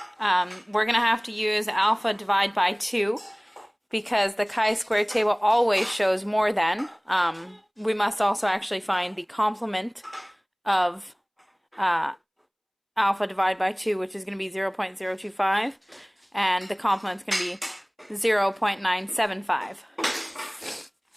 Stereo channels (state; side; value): identical; both; correlation 1.00